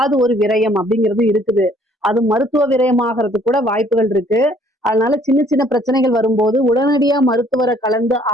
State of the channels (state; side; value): normal; both; correlation 0.60